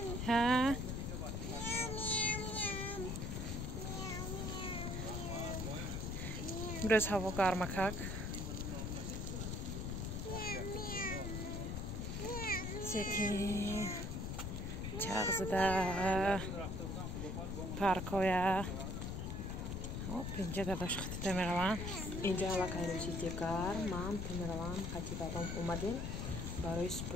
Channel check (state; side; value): noise; left; rumble, 3 dB below the sound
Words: ها برز هوا گرمکک سکی چغزده پارکویا اینجا داداش خطی میروم اینجا علاقه روزی دیگر من میروم خطی دادم اومدیم برای